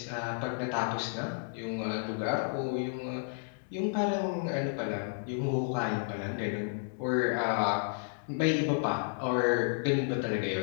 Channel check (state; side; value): silent; right; digital silence